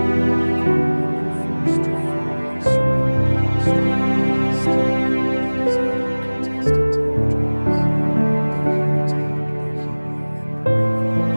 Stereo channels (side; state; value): both; inverted; correlation -1.00